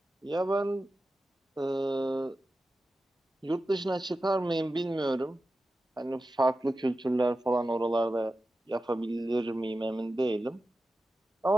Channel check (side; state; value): both; normal; correlation 0.93